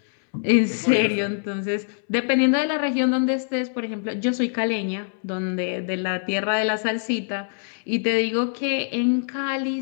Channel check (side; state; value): right; silent; 63 dB below the other